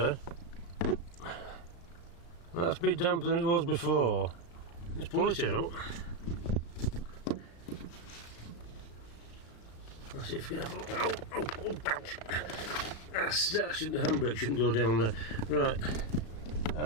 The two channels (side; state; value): right; late; 35 ms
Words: That's a bit damper than it was before. Let's pull it out. Let's see if we can have a look. Oh, ouch. The handbrake shouldn't go down there. Right.